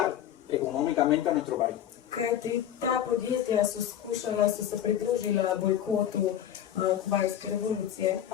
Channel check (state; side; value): quieter; right; 10.6 dB